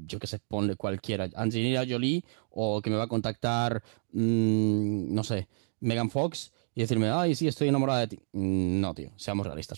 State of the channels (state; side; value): silent; left; digital silence